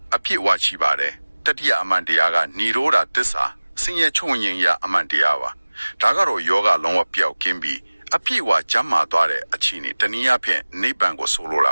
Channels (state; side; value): inverted; both; correlation -1.00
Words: အပြည့်ဝရှိပါတယ်တတိယအမှန်တရားကនិရောဓသစ္စာဆင်းရဲချုံငြိမ်ရအမှန်တရားပါဒါကတော့ယောဂလုံးဝပျောက်ကင်းပြီးအပြည့်ဝကျမ်းမာသွားတဲ့အခြေအနေတနည်းအားဖြင့်နိဗ္ဗာန်ကိုဆိုလိုတာ